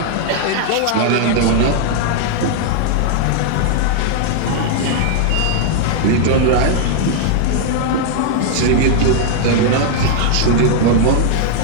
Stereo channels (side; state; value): both; different; correlation -0.01